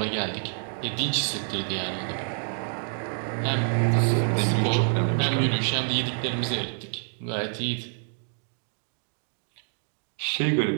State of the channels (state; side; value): silent; left; 60 dB below the other